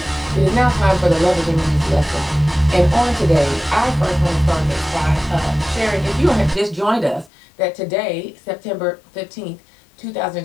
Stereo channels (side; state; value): right; drops out; at 7.3 s